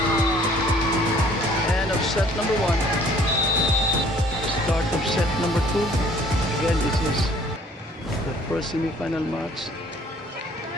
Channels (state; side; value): normal; both; correlation 0.56